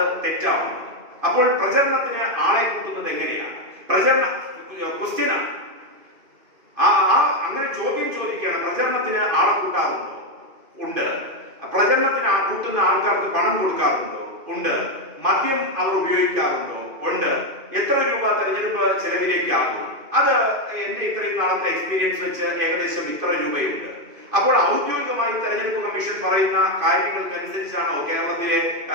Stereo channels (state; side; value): late; left; 2.5 ms